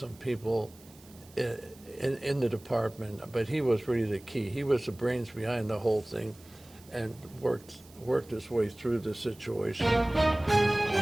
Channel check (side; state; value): right; noise; hiss, 25 dB below the sound